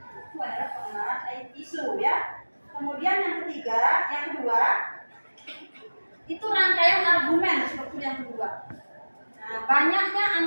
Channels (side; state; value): both; inverted; correlation -1.00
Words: Itu adalah pengenalan isu, ya. Kemudian yang kedua, itu rangkaian argumen seperti yang kedua. Nah, banyaknya